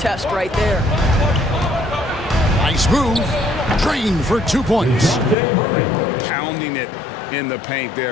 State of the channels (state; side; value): drops out; right; at 5.4 s